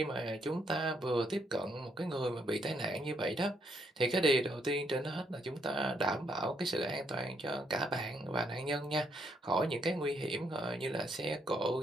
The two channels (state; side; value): normal; both; correlation 0.73